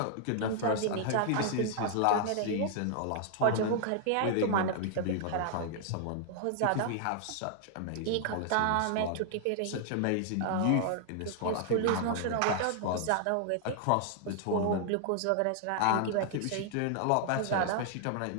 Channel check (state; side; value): different; both; correlation 0.00